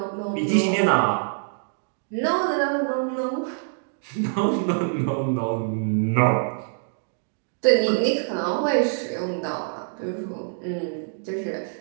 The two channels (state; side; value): silent; left; digital silence